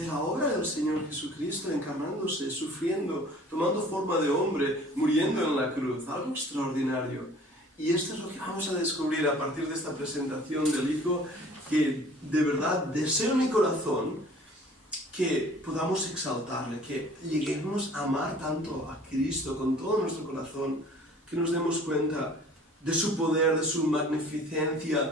la obra del Señor Jesucristo encarnándose, sufriendo, tomando forma de hombre, muriendo en la cruz, algo extraordinario. Y esto es lo que vamos a descubrir a partir de esta presentación del Hijo, que de verdad deseo en mi corazón que podamos exaltarle, que lleguemos a amar tanto a Cristo con todo nuestro corazón, que nos demos cuenta de su poder, de su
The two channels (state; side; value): normal; both; correlation 0.49